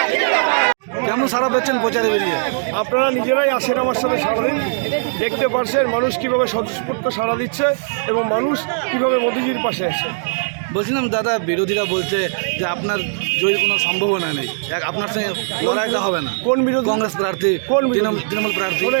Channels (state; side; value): silent; left; digital silence